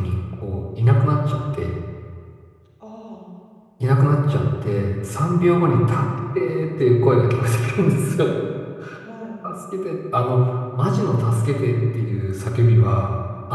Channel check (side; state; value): both; identical; correlation 1.00